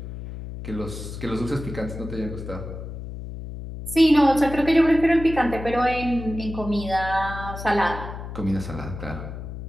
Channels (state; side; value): noise; left; hum, 9 dB below the sound